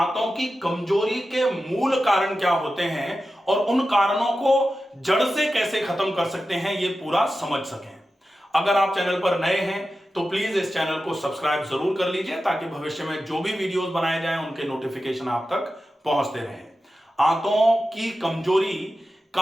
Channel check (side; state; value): both; normal; correlation 0.93